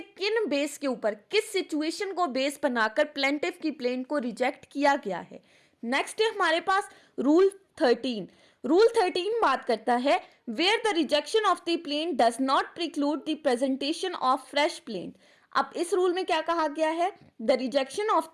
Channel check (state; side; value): identical; both; correlation 1.00